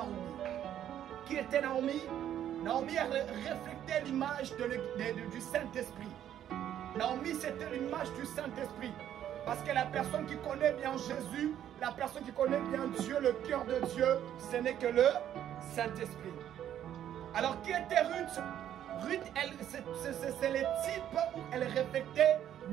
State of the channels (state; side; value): quieter; left; 10.8 dB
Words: Qui était Naomi? Naomi a reflété l'image du Saint-Esprit. Naomi, c'était l'image du Saint-Esprit. Parce que la personne qui connaît bien Jésus, la personne qui connaît bien Dieu, le cœur de Dieu, ce n'est que le Saint-Esprit. Alors, qui était Ruth? Ruth, c'est le type où elle reflétait